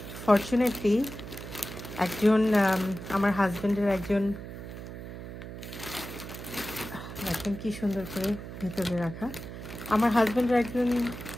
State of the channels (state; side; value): noise; right; hum, 10 dB below the sound